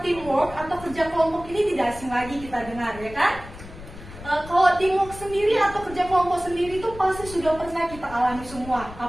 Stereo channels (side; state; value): left; noise; rumble, 15 dB below the sound